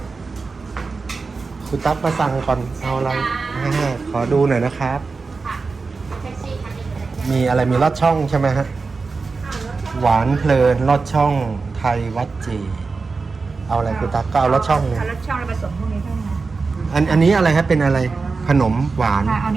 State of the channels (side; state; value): left; quieter; 4.3 dB